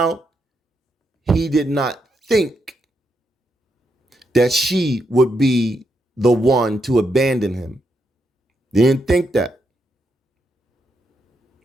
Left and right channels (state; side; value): normal; both; correlation 0.81